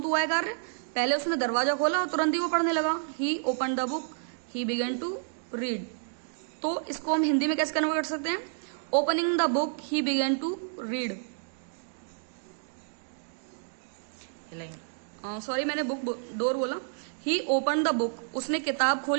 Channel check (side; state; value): left; silent; digital silence